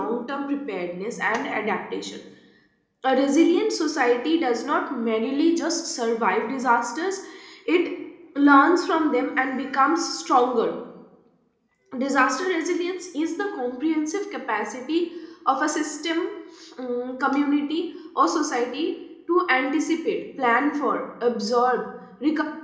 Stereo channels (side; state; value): both; identical; correlation 1.00